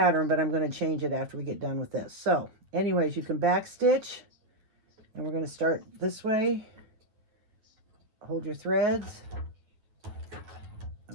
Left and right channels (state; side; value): late; left; 9.5 ms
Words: but I'm going to change it after we get done with this. So anyways, you can back stitch, and we're going to start this way. Hold your threads.